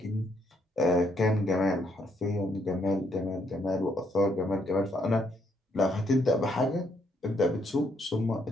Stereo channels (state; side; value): normal; both; correlation 0.72